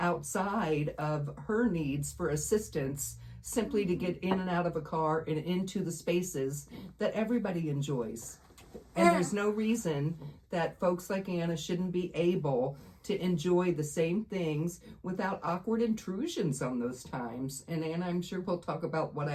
of her needs for assistance, simply to get in and out of a car and into the spaces that everybody enjoys. And there's no reason that folks like Anna shouldn't be able to enjoy the same things without awkward intrusions on those times. And Anna, I'm sure we'll talk about what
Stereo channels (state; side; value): identical; both; correlation 1.00